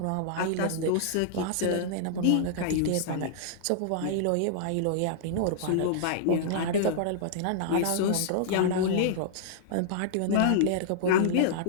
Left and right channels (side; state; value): both; different; correlation -0.02